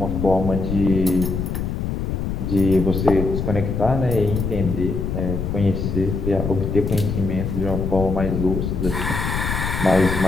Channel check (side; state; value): left; noise; rumble, 2 dB below the sound